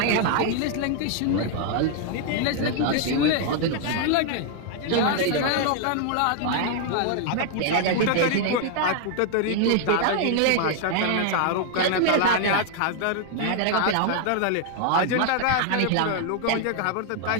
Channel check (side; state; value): both; different; correlation 0.00